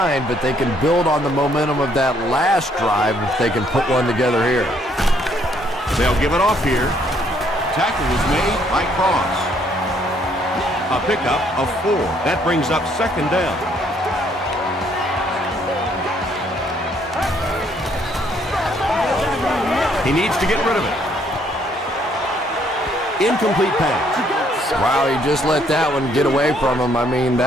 but they can build on the momentum of that last drive if they can put one together here. They'll give it off here. Tackle was made by Cross. A pickup of 4. That brings up 2nd down. He needs to get rid of it. Incomplete pass. Wow, he just let that one get away from him. I mean,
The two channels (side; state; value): both; normal; correlation 0.67